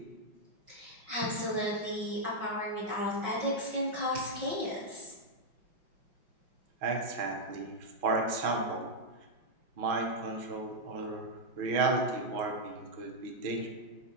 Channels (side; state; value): left; late; 5.4 ms